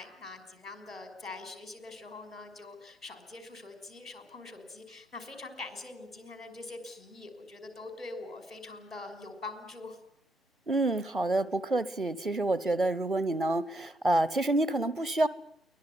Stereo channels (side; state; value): both; normal; correlation 0.77